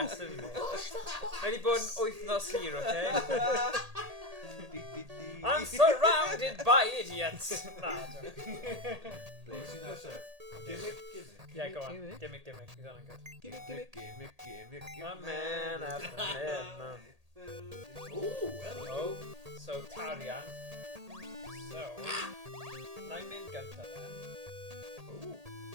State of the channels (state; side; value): late; left; 1.8 ms